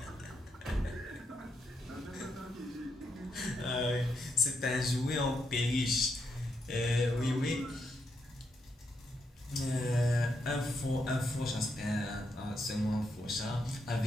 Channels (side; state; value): both; normal; correlation 0.81